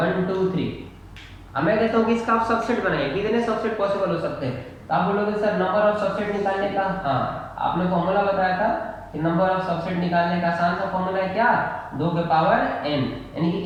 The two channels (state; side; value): identical; both; correlation 1.00